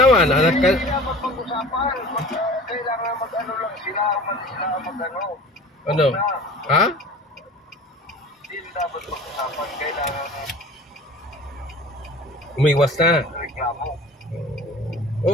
Anak ka. Hindi naman pag-usapan. Kailangan mag-ano lang sila. Umalis sila mag-ano. Ano? Ha? Hindi dapat pag-usapan. Kailangan Umiwas na. reklamo.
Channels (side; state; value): both; normal; correlation 0.42